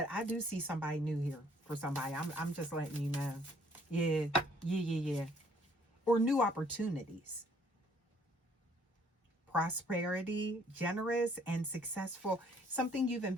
I do see somebody new here for somebody. I'm just letting you know. Yeah, yeah. Or new opportunities. Prosperity, generous and successful. Something you've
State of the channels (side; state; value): both; normal; correlation 0.62